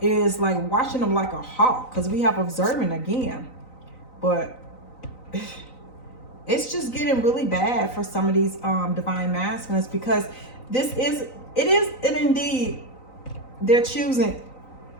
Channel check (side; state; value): right; late; 3.9 ms